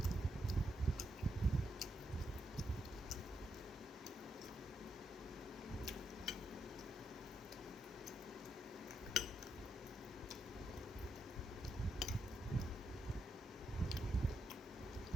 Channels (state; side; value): normal; both; correlation 0.81